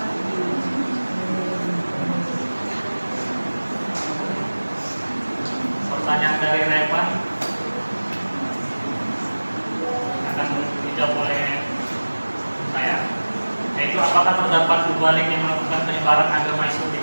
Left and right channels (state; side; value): inverted; both; correlation -1.00